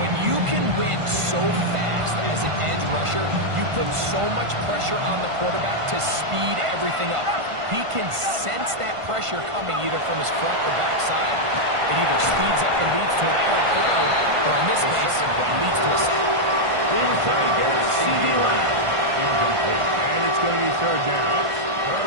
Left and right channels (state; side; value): late; left; 1.5 ms